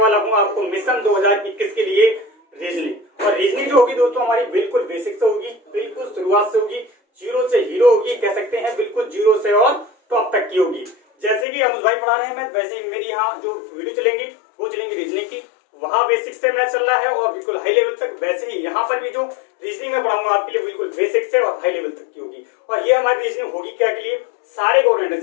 हूं आपको मिशन 2021 के लिए रीजनिंग। और रीजनिंग जो होगी दोस्तों हमारी बिल्कुल बेसिक से होगी, बिल्कुल शुरुआत से होगी, जीरो से हीरो होगी कह सकते हैं, बिल्कुल जीरो से और टॉप तक की होगी। जैसे कि अनुज भाई पढ़ा रहे हैं मैथ, वैसे ही मेरी यहाँ जो वीडियो चलेंगी वो चलेंगी रीजनिंग की। वहाँ बेसिक से मैथ चल रहा है और बिल्कुल हाई लेवल तक, वैसे ही यहाँ पर भी जो रीजनिंग में पढ़ाऊंगा आपके लिए बिल्कुल बेसिक से और हाई लेवल तक की होगी। और ये हमारी रीजनिंग होगी क्या के लिए, सारे गवर्नमेंट,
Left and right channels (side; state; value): right; drops out; at 11.5 s